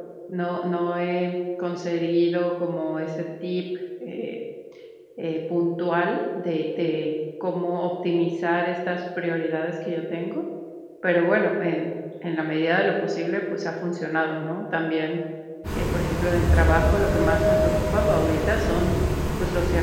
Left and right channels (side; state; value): both; identical; correlation 1.00